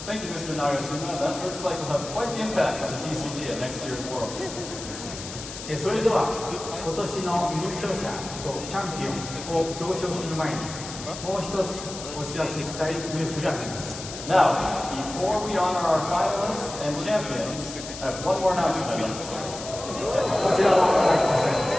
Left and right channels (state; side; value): noise; left; hiss, 10 dB below the sound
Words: Thank you, Mr. Nagashima. That looks like we'll have quite the impact on the TCG at next year's Worlds. それでは今年の優勝者とチャンピオンを表彰する前にもう一つお知らせしたいニュースがあります。 Now, before we honor our finalists and champions, I have one more announcement I'd like to share. こちらをご覧ください。